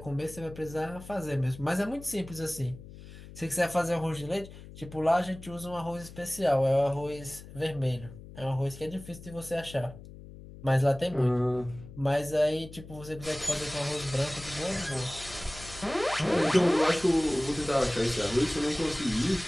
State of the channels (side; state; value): left; noise; hum, 16 dB below the sound